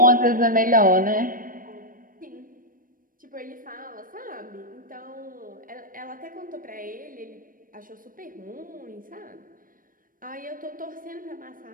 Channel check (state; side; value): late; left; 0.40 ms